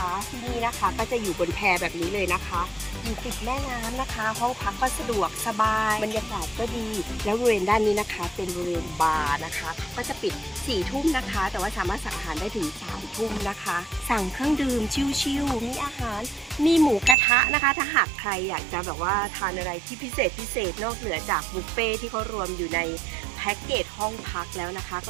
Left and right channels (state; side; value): drops out; left; at 17.2 s